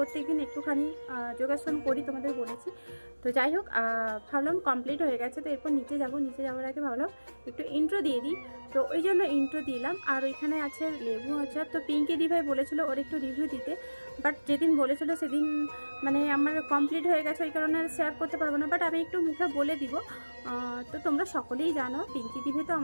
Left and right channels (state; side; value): inverted; both; correlation -1.00